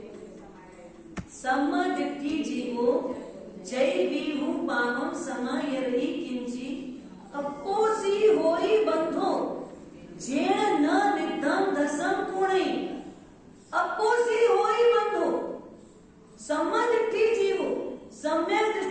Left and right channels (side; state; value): both; identical; correlation 1.00